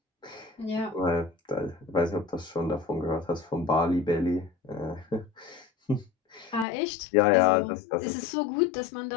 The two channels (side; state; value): right; drops out; at 6.7 s